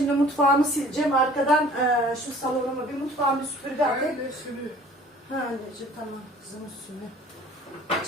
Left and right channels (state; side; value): normal; both; correlation 0.50